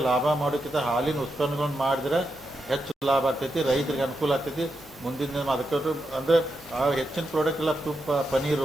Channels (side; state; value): both; normal; correlation 0.86